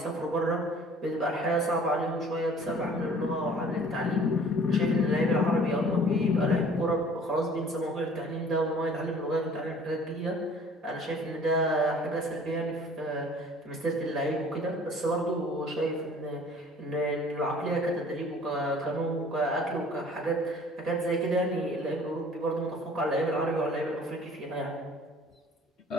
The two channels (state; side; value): normal; both; correlation 0.51